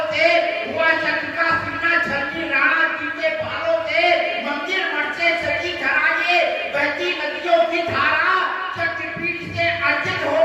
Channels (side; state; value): both; identical; correlation 1.00